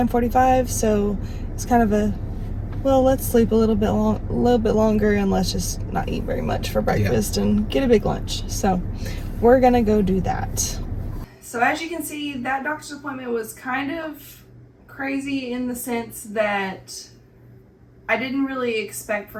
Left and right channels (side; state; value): both; identical; correlation 1.00